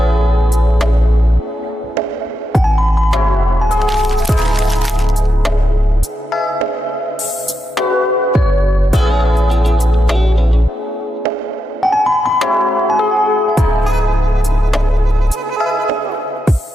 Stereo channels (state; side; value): normal; both; correlation 0.86